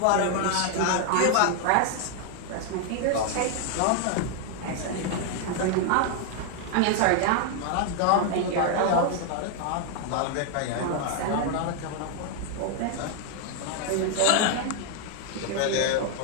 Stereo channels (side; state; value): both; different; correlation 0.00